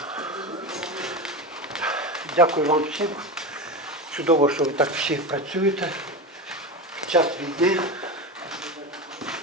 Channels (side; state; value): both; normal; correlation 0.21